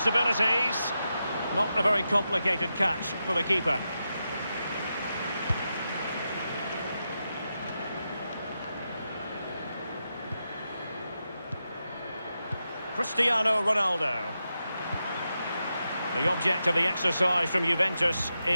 Not a very complicated catch for the keeper. Cristiano Ronaldo. The object of the exercise from Juventus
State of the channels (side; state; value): both; inverted; correlation -0.88